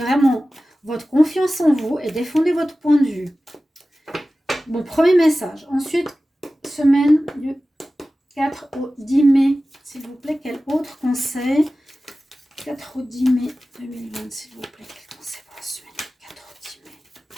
votre confiance en vous et défendez votre point de vue. Bon, premier message. Ensuite, semaine du 4 au 10 mai, s'il vous plaît, quel autre conseil? 4 au 10 mai 2020, s'il vous plaît, quel conseil pour la semaine?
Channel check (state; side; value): normal; both; correlation 0.96